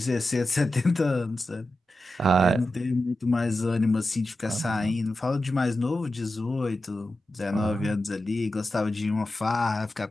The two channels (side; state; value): both; normal; correlation 0.91